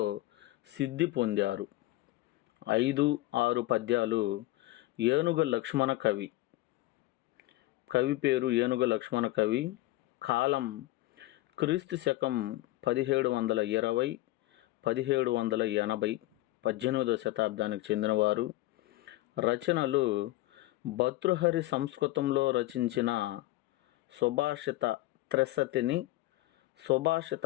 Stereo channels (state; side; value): quieter; right; 17.8 dB